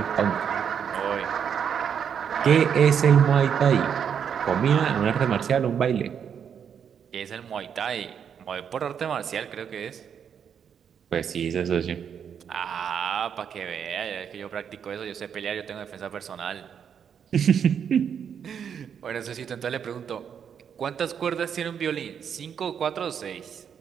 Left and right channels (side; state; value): left; quieter; 7.8 dB